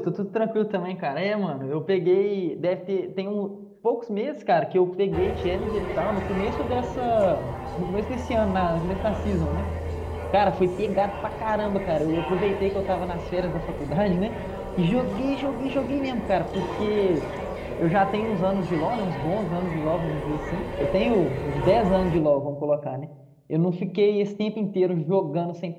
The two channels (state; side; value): identical; both; correlation 1.00